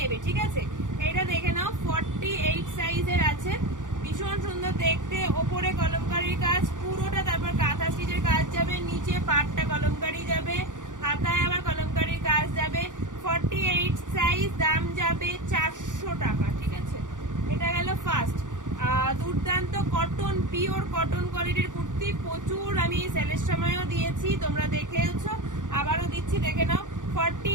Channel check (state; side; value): late; left; 0.87 ms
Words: ঠিক আছে? এটা দেখে নাও, 48 সাইজের আছে, ভীষণ সুন্দর দেখতে, ওপরে কলমকারীর কাজ পুরোটা, তারপর কাঁথা স্টিচের কাজ যাবে, নিচে পাটটা কলমকারী যাবে, হাতায় আবার কলমকারীর কাজ যাবে। 48 সাইজ, দাম যাবে 400 টাকা, ঠিক আছে? এটা গেল ফার্স্ট। দুর্দান্ত কটন, পিওর কটন কোয়ালিটির কুর্তি, প্রচুর আমি সেলের সময়ও দিয়েছি, তোমরা দেখেওছো, আবারও দিচ্ছি, দেখে নাও।